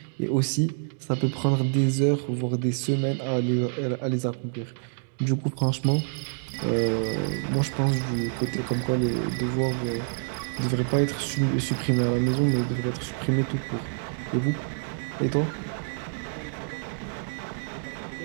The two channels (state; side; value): silent; left; digital silence